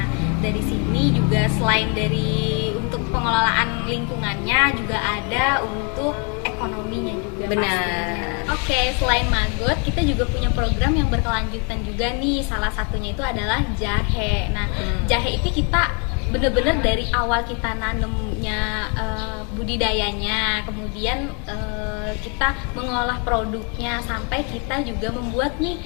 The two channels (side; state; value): right; quieter; 36.8 dB